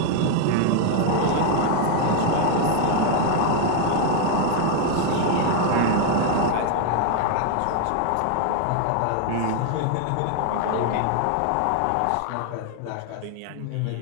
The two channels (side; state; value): both; different; correlation 0.01